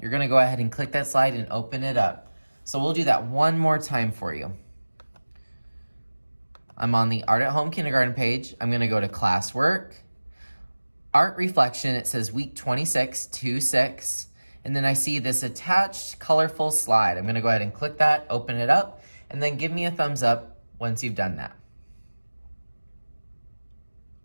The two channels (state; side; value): inverted; both; correlation -1.00